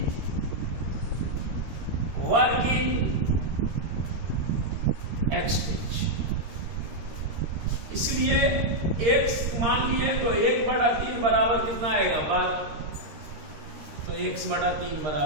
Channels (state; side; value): late; left; 13 ms